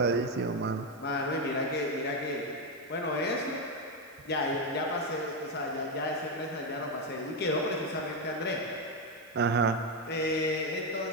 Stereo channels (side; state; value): right; noise; hiss, 26 dB below the sound